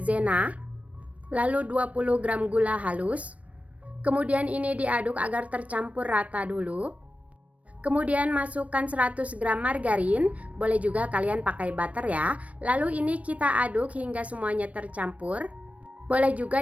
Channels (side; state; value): left; late; 0.066 ms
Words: lalu 20 gram gula halus. Kemudian ini diaduk agar tercampur rata dulu. Kemudian masukkan 100 gram margarin, boleh juga kalian pakai butter ya. Lalu ini kita aduk hingga semuanya tercampur. Boleh